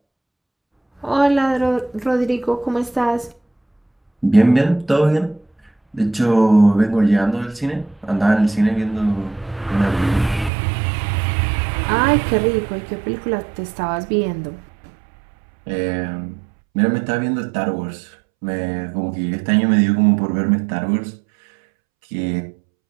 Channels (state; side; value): drops out; left; at 10.5 s